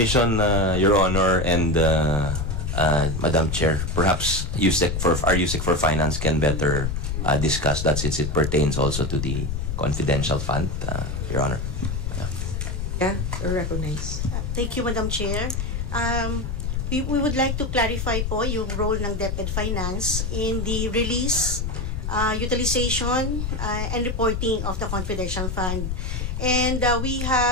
Your Honor, and Madam Chair, perhaps our USEC for Finance can better discuss that since it pertains also to the confidential fund, Your Honor. Yeah, recognize. Thank you, Madam Chair. We would like to clarify po yung role ng DepEd Finance in the release, utilization, and reporting of the confidential fund. And we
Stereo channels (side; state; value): left; noise; rumble, 2 dB below the sound